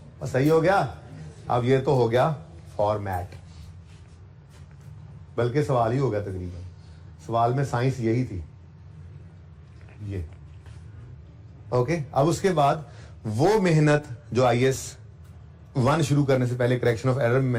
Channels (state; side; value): identical; both; correlation 1.00